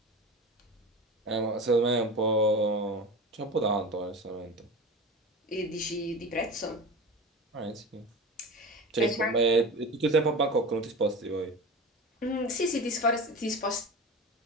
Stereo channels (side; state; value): both; normal; correlation 0.31